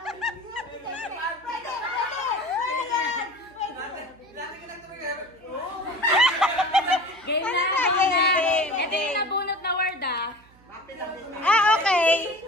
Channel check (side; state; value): right; noise; hum, 28 dB below the sound